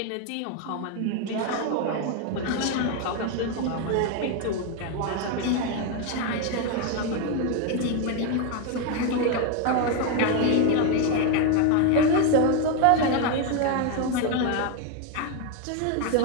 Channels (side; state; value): both; different; correlation 0.02